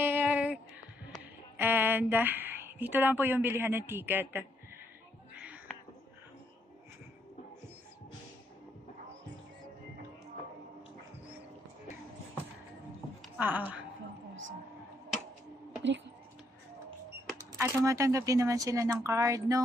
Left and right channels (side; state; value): both; normal; correlation 0.74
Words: And dito lang po yung bilihan ng ticket. At tumatanggap din naman sila ng card,